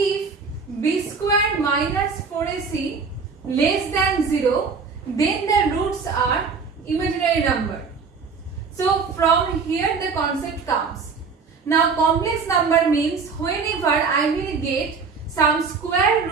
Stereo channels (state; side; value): quieter; left; 5.1 dB